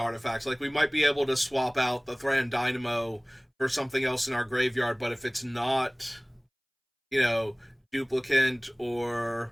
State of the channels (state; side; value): identical; both; correlation 1.00